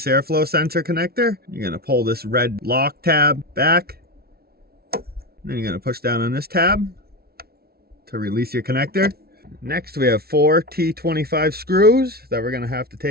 airflow sensor connector. You're going to pull this red lock tab back. And then you're going to push down on this tab to release your connector. Next, we have 4 T25 screws that we're going to have to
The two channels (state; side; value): late; left; 0.45 ms